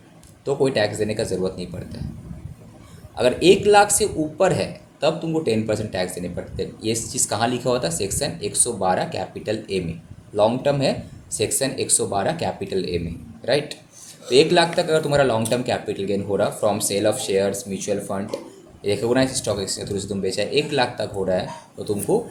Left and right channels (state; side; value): identical; both; correlation 1.00